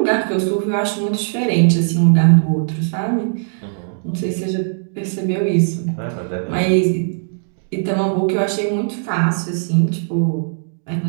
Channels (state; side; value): silent; left; digital silence